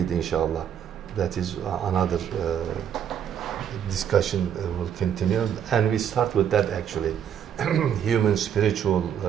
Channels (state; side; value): quieter; left; 8.9 dB